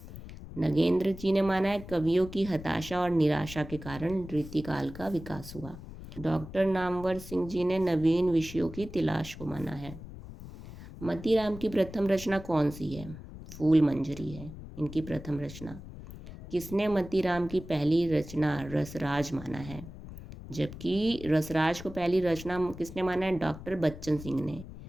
नगेंद्र जी ने माना है कवियों की हताशा और निराशा के कारण रीतिकाल का विकास हुआ। डॉक्टर नामवर सिंह जी ने नवीन विषयों की तलाश को माना है। मतीराम की प्रथम रचना कौन सी है? फूल मंजरी है इनकी प्रथम रचना। किसने मतीराम की पहली रचना रसराज माना है? जबकि रसराज को पहली रचना किसने माना है? डॉक्टर बच्चन सिंह ने।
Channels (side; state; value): left; noise; rumble, 13 dB below the sound